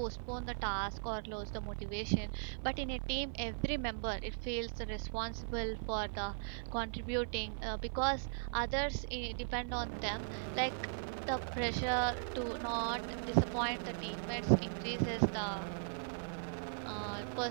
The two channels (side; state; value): left; silent; 52 dB below the other